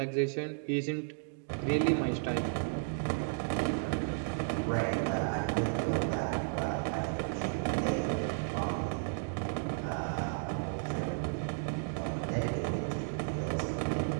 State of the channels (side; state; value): left; silent; digital silence